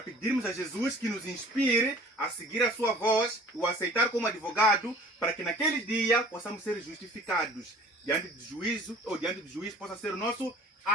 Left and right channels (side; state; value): both; normal; correlation 0.48